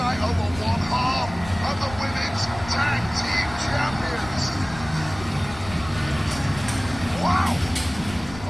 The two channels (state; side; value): noise; left; rumble, 15 dB below the sound